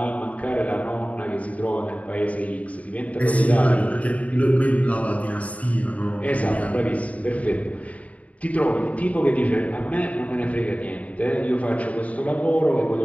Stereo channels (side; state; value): right; late; 0.068 ms